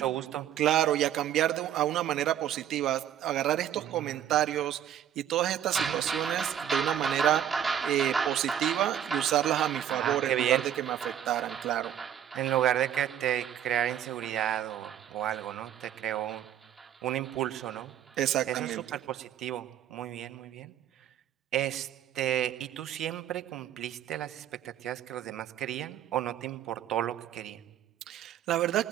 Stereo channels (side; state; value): left; quieter; 10.3 dB